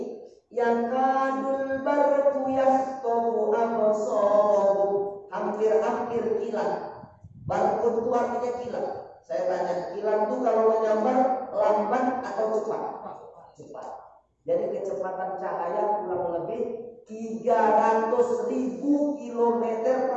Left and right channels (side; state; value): both; identical; correlation 1.00